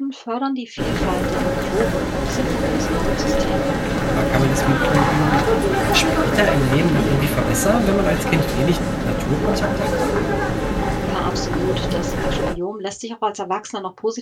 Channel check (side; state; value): both; identical; correlation 1.00